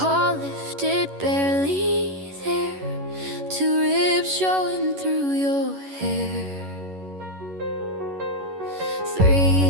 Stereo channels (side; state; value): left; late; 11 ms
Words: lifted, barely there. Two ribs showing through your hair.